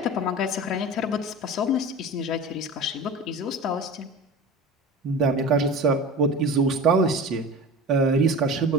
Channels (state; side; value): normal; both; correlation 0.33